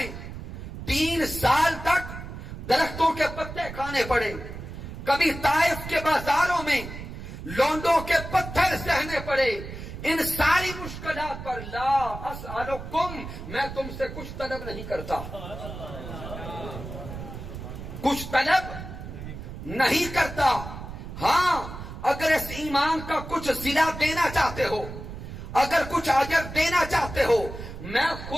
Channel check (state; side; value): noise; right; rumble, 10 dB below the sound